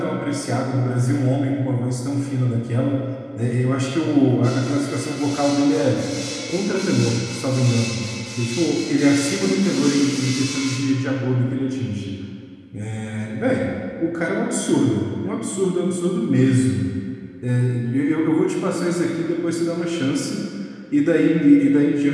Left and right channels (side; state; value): both; identical; correlation 1.00